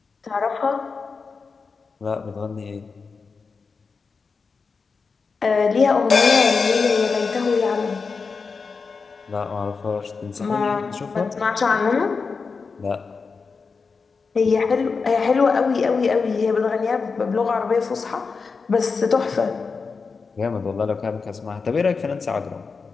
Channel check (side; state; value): right; quieter; 4.8 dB